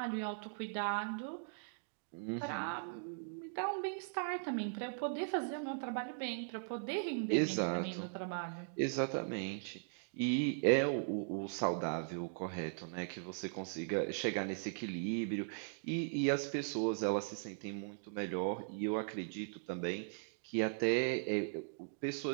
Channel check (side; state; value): left; silent; digital silence